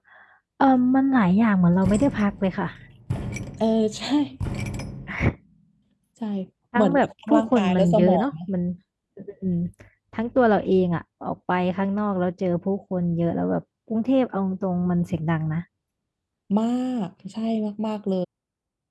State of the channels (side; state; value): both; identical; correlation 1.00